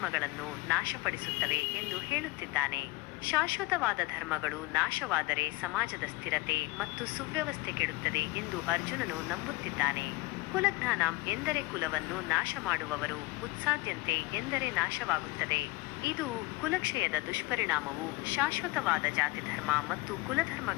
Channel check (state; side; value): quieter; right; 22.4 dB